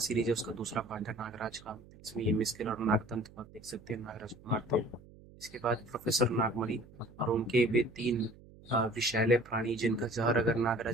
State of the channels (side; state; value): right; noise; hum, 22 dB below the sound